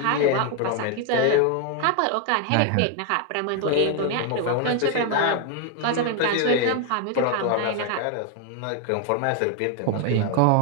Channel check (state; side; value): different; both; correlation 0.01